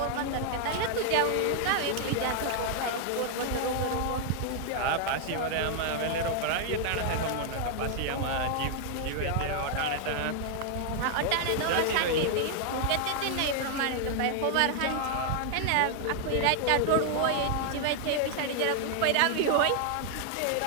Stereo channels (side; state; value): both; different; correlation 0.00